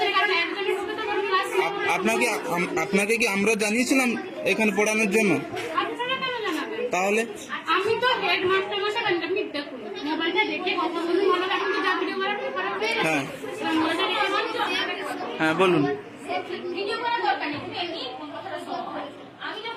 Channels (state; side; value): identical; both; correlation 1.00